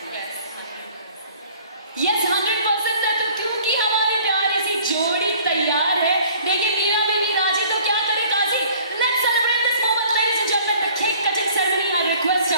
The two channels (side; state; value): both; inverted; correlation -0.53